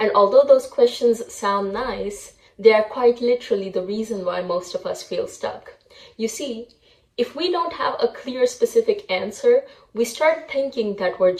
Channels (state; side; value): identical; both; correlation 1.00